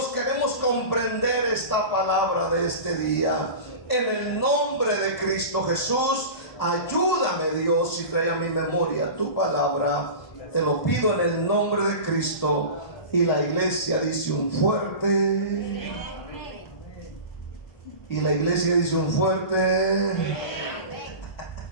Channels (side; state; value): right; late; 1.8 ms